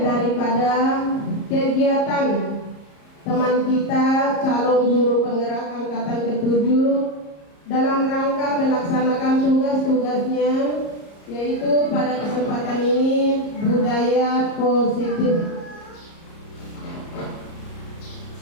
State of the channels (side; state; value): right; late; 34 ms